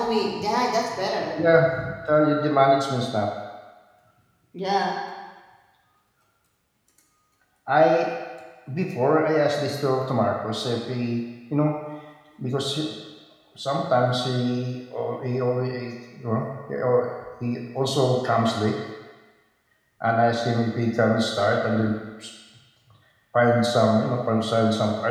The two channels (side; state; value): both; identical; correlation 1.00